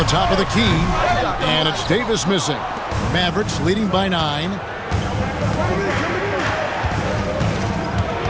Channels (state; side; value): identical; both; correlation 1.00